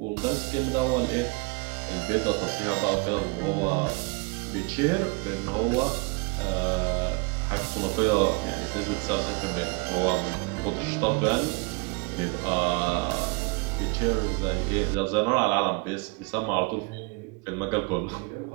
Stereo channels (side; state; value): left; quieter; 28.5 dB